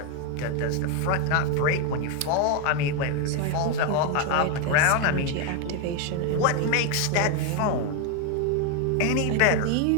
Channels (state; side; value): different; both; correlation 0.01